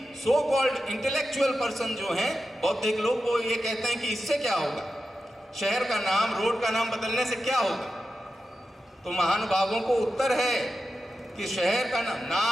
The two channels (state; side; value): normal; both; correlation 0.90